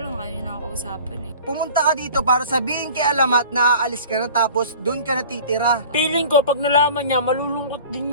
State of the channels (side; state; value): both; inverted; correlation -0.44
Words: lang ayaw niya nakakausapan eh. Pumunta ka dito para sabihin kay Alamat na aalis ka na tapos doon ka na titira. Feeling ko, pag nalaman niya, malulungkot din